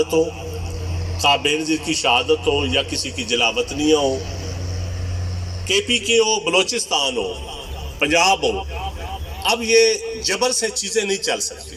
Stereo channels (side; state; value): both; identical; correlation 1.00